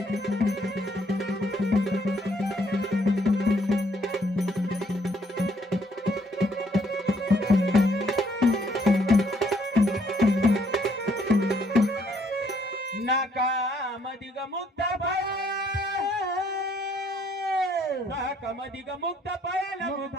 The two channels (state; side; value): normal; both; correlation 0.68